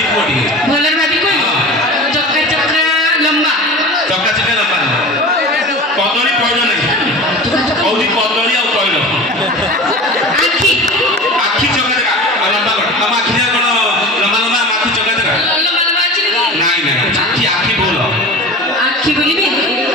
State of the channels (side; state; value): both; normal; correlation 0.34